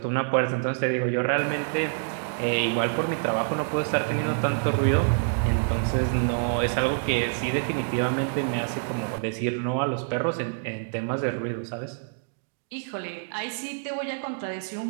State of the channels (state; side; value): silent; left; digital silence